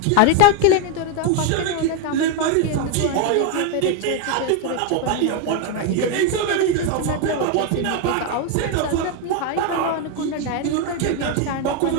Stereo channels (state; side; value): different; both; correlation 0.01